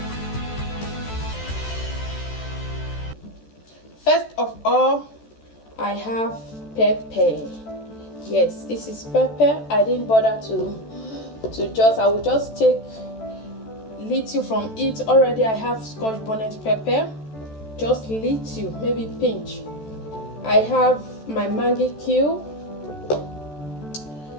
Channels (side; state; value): right; late; 14 ms